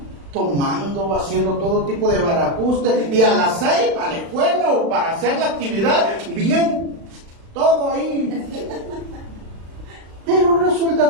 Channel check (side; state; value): left; late; 36 ms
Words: tomando, haciendo todo tipo de barajuste, y a las 6 para la escuela o para hacer la actividad, bien, todo ahí. Pero